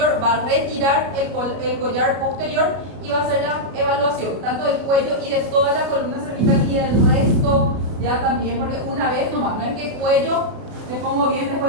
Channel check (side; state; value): left; late; 33 ms